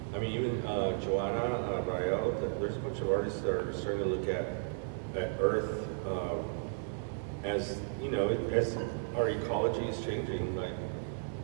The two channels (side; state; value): left; silent; digital silence